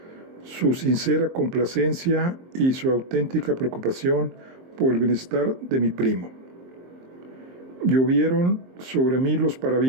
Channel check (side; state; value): left; late; 23 ms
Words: su sincera complacencia y su auténtica preocupación por el bienestar de mi primo. Llovieron sobre mí los